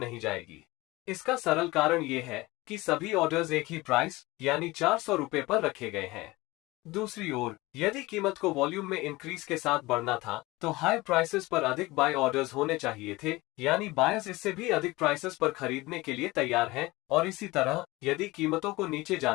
जाएगी। इसका सरल कारण ये है कि सभी ऑर्डर्स एक ही प्राइस यानी 400 रुपए पर रखे गए हैं। दूसरी ओर, यदि कीमत को वॉल्यूम में इंक्रीज के साथ बढ़ना था तो हाई प्राइसेस पर अधिक बाय ऑर्डर्स होने चाहिए थे, यानी बायर्स इससे भी अधिक प्राइसेस पर खरीदने के लिए तैयार हैं, और इसी तरह यदि कीमतों को नीचे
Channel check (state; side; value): quieter; right; 20.9 dB